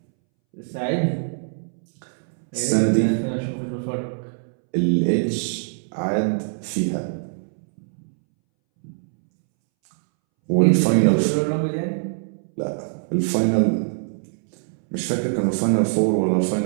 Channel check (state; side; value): silent; left; 63 dB below the other